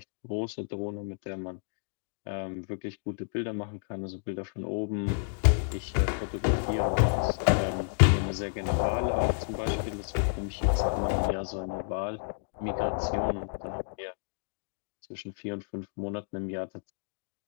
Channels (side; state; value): right; silent; digital silence